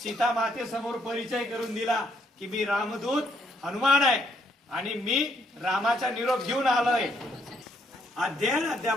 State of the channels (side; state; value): both; normal; correlation 0.72